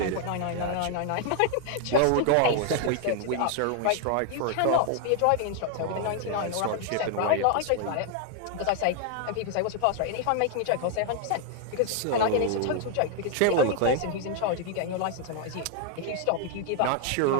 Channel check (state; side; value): different; both; correlation 0.00